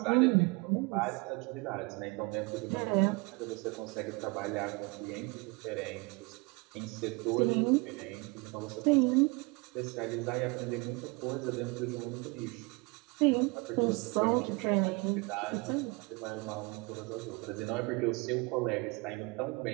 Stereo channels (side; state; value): left; quieter; 27.5 dB